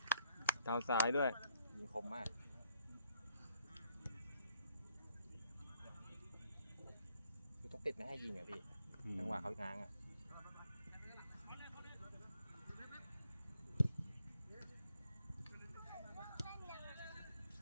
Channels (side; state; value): both; inverted; correlation -0.69